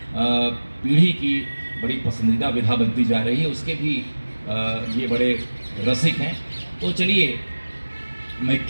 पीढ़ी की बड़ी पसंदीदा विधा बनती जा रही है, उसके भी ये बड़े रसिक हैं। तो चलिए, मैं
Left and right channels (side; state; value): both; inverted; correlation -1.00